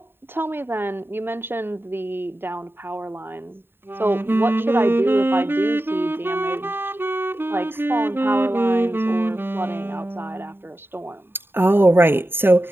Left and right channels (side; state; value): left; late; 0.11 ms